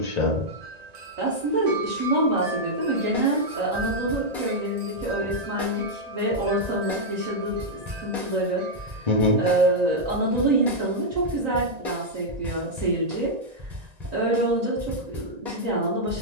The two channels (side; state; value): left; late; 1.9 ms